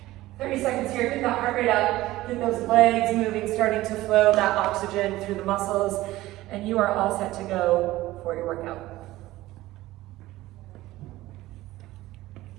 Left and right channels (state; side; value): quieter; left; 17.0 dB